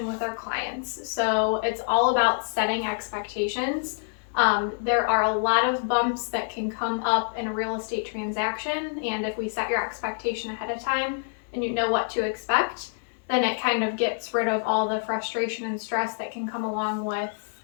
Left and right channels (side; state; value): right; silent; digital silence